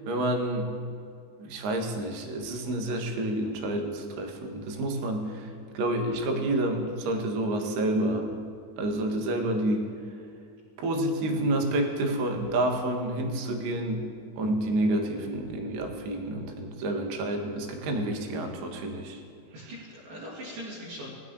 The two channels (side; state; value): left; late; 19 ms